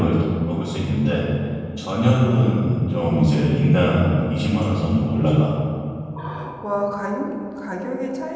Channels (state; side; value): identical; both; correlation 1.00